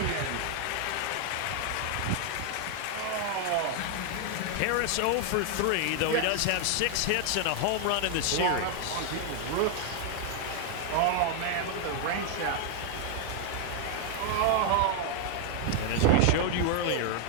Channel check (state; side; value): different; both; correlation 0.00